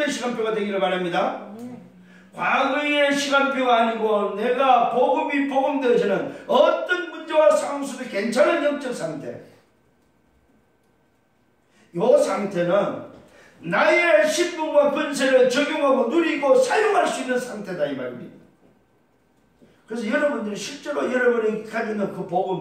시간표가 되기를 바랍니다. 과거의 시간표가 아니고 내가 복음이 복음되어지는 어떤 문제와 상황 속에 괜찮은 영적 상태, 이 상태는 나의 신분과 권세를 적용하고 누리고 사용할 수 있는 상태다 이 말입니다. 그래서 여러분들이 실제로 여러분이 가지고 있는 그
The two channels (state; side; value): identical; both; correlation 1.00